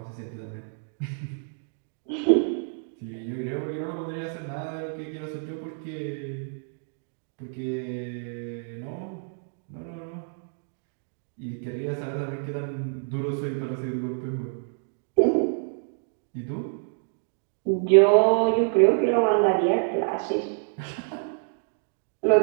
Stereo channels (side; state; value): left; silent; digital silence